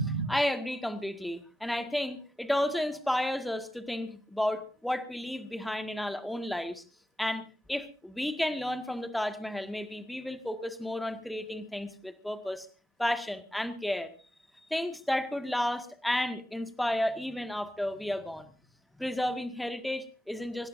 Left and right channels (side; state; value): both; normal; correlation 0.91